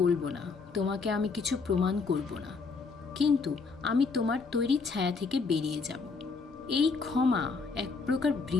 বলবো না, তোমাকে আমি কিছু প্রমাণ করব না, কিন্তু আমি তোমার তৈরি ছায়া থেকে বেরিয়ে যাব। এই ক্ষমা এক প্রকার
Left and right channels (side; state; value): right; quieter; 4.6 dB